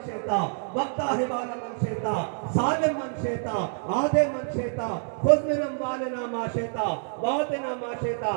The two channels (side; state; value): left; silent; 60 dB below the other